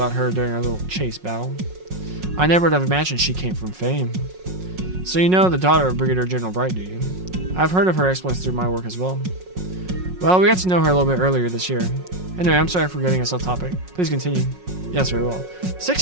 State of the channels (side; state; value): left; late; 5.5 ms